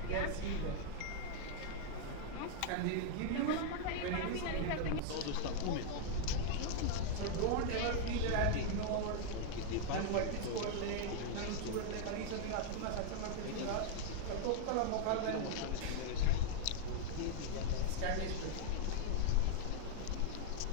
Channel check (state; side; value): different; both; correlation 0.00